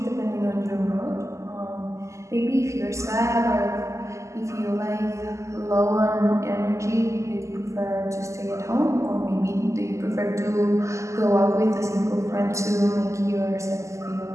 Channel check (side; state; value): left; late; 0.14 ms